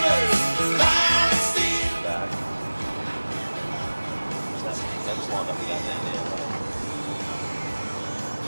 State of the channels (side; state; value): both; inverted; correlation -1.00